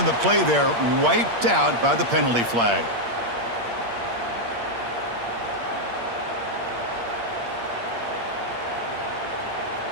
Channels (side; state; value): left; late; 8.6 ms